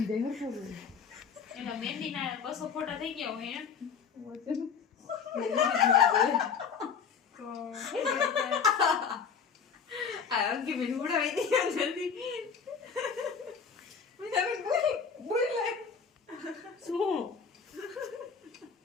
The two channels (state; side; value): quieter; right; 6.3 dB